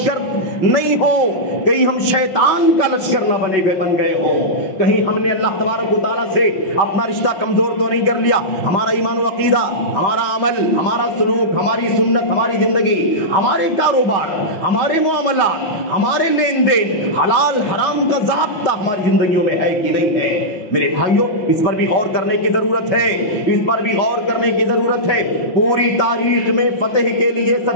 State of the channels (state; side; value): late; right; 5.3 ms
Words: نہیں ہو، کہیں ہم شیطان کا لشکر نہ بن گئے ہو، کہیں ہم نے اللہ تبارک و تعالیٰ سے اپنا رشتہ کمزور تو نہیں کر لیا، ہمارا ایمان و عقیدہ، ہمارا عمل، ہمارا سلوک، ہماری سنت، ہماری زندگی، ہمارے کاروبار، ہمارے معاملات، ہمارے لین دین، حلال حرام کا ضابطہ ہماری زندگیوں میں ہے کہ نہیں ہے۔ میرے بھائیوں، اس پر بھی غور کرنے کی ضرورت ہے، اس پر بھی غور کرنے کی ضرورت ہے۔ پوری تاریخ میں فتح کے لیے